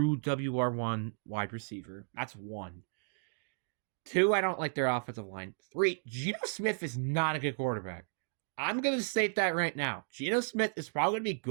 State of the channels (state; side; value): silent; left; digital silence